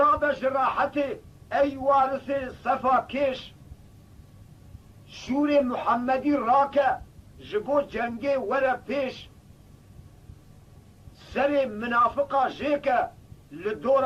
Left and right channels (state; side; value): identical; both; correlation 1.00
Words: راحته ای وارث صفا کش شور محمدی راکه جبو جنگه وره پیش سر منافقا جیکه